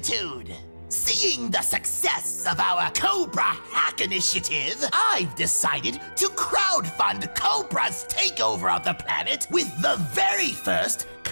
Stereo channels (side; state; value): both; inverted; correlation -1.00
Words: Seeing the success of our Cobra Hack Initiative, I've decided to crowdfund Cobra's takeover of the planet with the very first